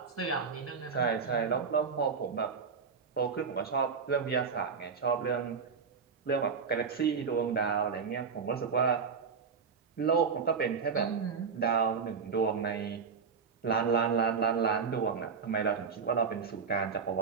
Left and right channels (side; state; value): left; quieter; 5.8 dB